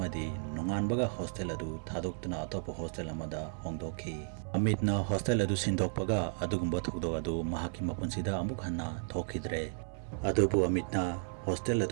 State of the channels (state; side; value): silent; left; 55 dB below the other